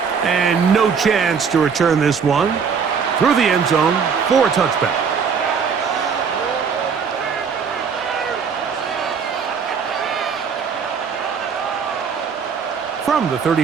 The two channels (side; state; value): left; quieter; 6.3 dB